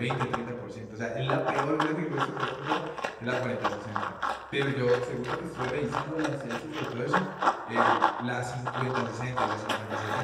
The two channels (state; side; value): identical; both; correlation 1.00